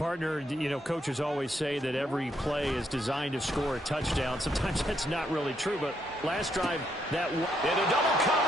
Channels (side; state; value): both; normal; correlation 0.76